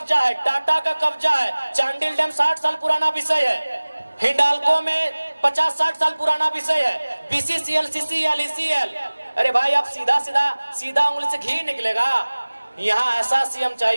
है, टाटा का कब्जा है, चांडिल डैम 60 साल पुराना विषय है, हिंडाल्को में 50-60 साल पुराना विषय है, बीसीसीएल, सीसीएल, ईसीएल। अरे भाई, आप सीधा उंगली से घी निकलेगा। यहाँ ऐसा सीएम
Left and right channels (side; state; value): both; inverted; correlation -1.00